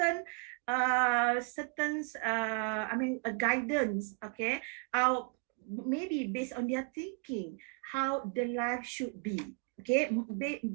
a guidance, okay, maybe based on their thinking how the life should be, okay,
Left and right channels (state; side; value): quieter; left; 34.1 dB